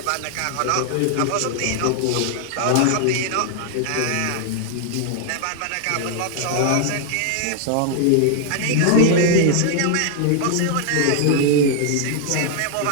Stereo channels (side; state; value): both; different; correlation 0.00